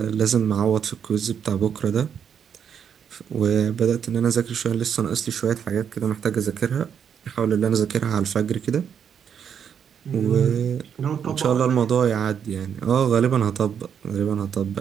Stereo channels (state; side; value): quieter; left; 7.9 dB